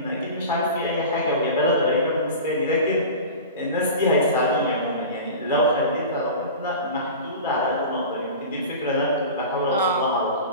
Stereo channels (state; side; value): inverted; both; correlation -0.33